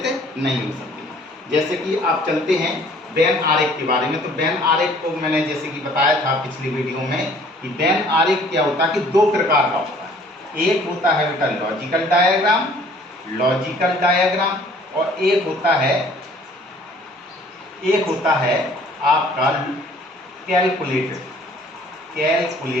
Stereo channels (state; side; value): normal; both; correlation 0.55